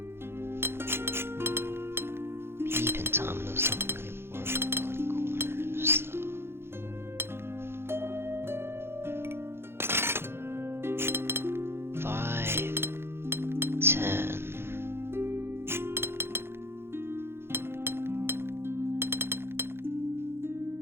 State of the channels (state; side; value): late; left; 0.11 ms